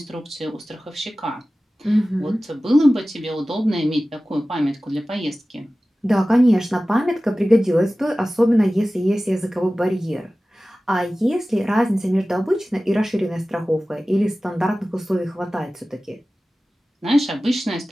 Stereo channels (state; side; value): normal; both; correlation 0.96